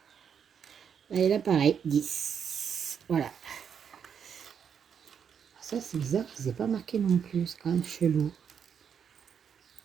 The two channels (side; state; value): left; quieter; 7.6 dB